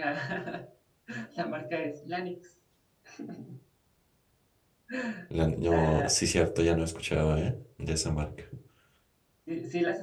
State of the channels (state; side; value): identical; both; correlation 1.00